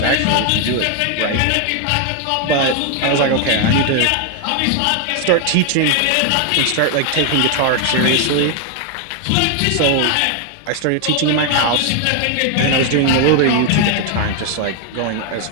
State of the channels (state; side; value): different; both; correlation 0.01